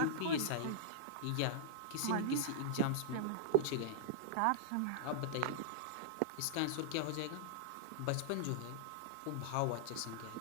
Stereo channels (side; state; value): both; different; correlation -0.02